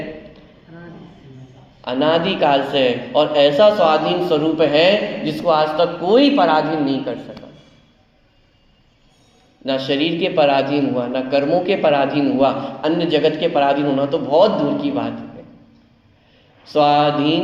अनादि काल से। और ऐसा स्वाधीन स्वरूप है जिसको आज तक कोई पराधीन नहीं कर सका। ना शरीर के पराधीन हुआ, ना कर्मों के पराधीन हुआ, अन्य जगत के पराधीन होना तो बहुत दूर की बात है।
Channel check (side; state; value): both; identical; correlation 1.00